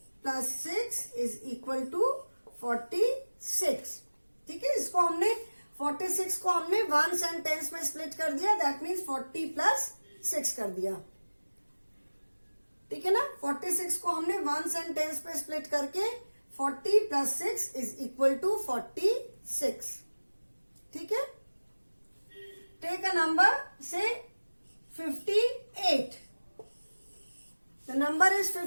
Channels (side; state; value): both; inverted; correlation -1.00